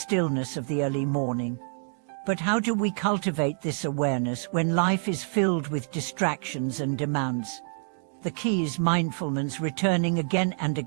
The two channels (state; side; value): silent; left; digital silence